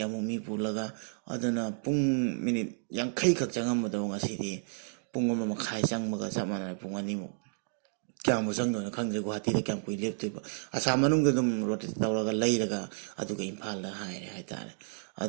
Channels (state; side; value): silent; left; digital silence